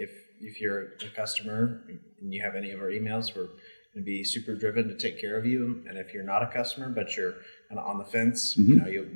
you're a customer and you have any of our emails, we're going to be super driven to take care of you. And if you're not a customer but you're kind of on the fence,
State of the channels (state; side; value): inverted; both; correlation -1.00